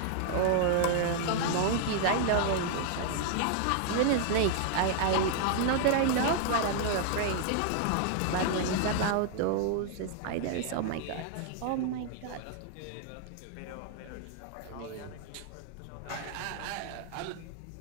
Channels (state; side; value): different; both; correlation 0.00